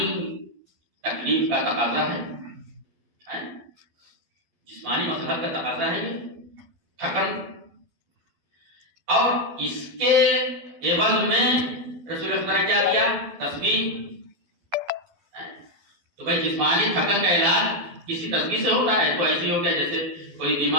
تکلیف کا تقاضا ہے، جسمانی مسئلہ کا تقاضا ہے یہ تھکن. اور اس کے عوض میں رسول خدا نے کیا دیا؟ تسبیح. تو بھائی جسمانی تھکن کا علاج کسی تسبیح سے ہوتا ہے؟ تو ایسے ہو گیا جیسے کوئی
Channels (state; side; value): late; left; 12 ms